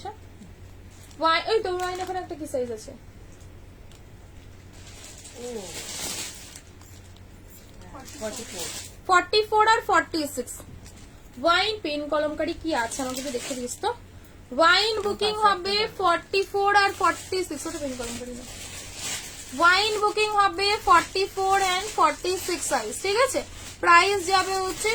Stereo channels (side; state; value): both; identical; correlation 1.00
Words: ওয়াইন ওই তো ওয়াইন এখন একটা কি সাইজ আছে? 44 আর 46। ওয়াইন পেন কলমকারি কি আছে আমাকে একটু দেখে দিস তো। ওয়াইন বুকিং হবে 44 আর 46, ওটা পেন কলমকারি না। ওয়াইন বুকিং হবে 44 এন্ড 46 সাইজ, ঠিক আছে। প্রাইস যাবে হচ্ছে